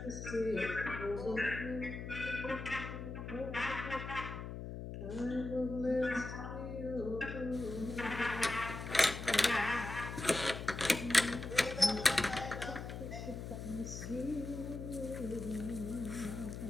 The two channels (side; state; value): left; noise; hum, 7 dB below the sound